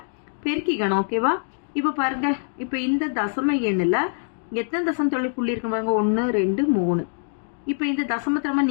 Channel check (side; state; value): right; silent; digital silence